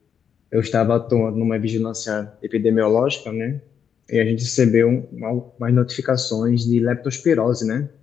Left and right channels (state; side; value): quieter; right; 7.7 dB